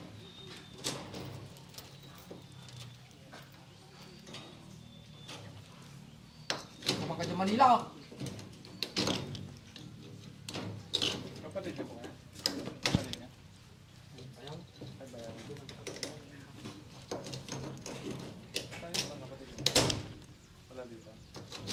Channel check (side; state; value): both; identical; correlation 1.00